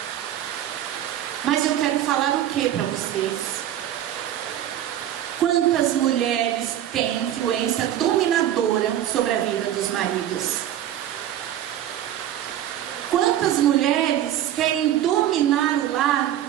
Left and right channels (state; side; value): quieter; left; 11.6 dB